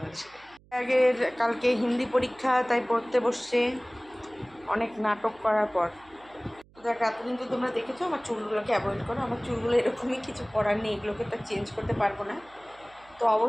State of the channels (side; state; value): right; noise; hum, 28 dB below the sound